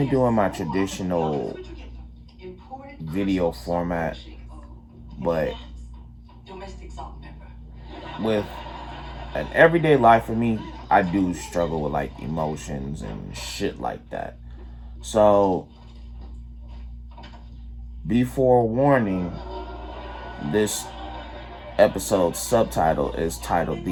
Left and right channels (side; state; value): both; identical; correlation 1.00